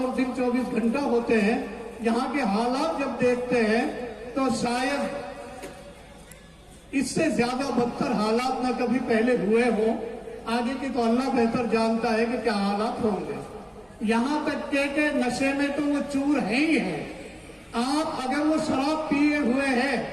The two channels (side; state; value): both; identical; correlation 1.00